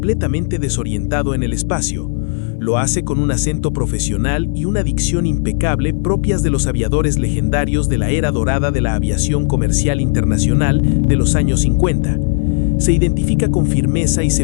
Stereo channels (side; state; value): right; silent; digital silence